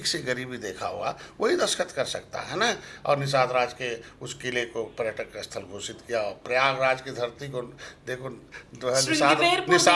से गरीबी देखा हुआ, वही दस्तखत कर सकता है ना। और निषाद राज के उस किले को पर्यटक स्थल घोषित किया, और प्रयागराज की धरती को देखो,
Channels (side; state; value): both; identical; correlation 1.00